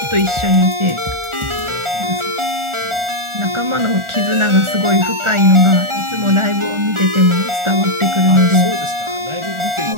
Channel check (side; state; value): left; late; 1.4 ms